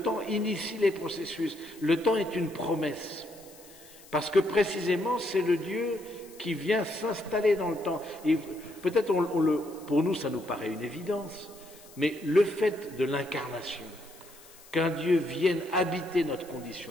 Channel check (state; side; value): noise; left; hiss, 22 dB below the sound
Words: initie les processus. Le temps est une promesse. Parce que précisément, c'est le Dieu qui vient s'installer dans le temps. Et peut-être, pour nous, ça nous paraît une évidence, mais le fait de l'incarnation, qu'un Dieu vienne habiter notre